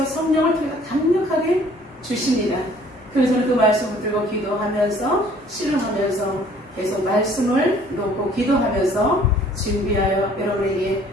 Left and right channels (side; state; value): both; normal; correlation 0.56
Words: 성령을 통해 강력하게 주십니다. 그래서 저는 그 말씀을 들고 기도하면서 씨름하면서 계속 말씀을 놓고 기도하면서 준비하여 여러분에게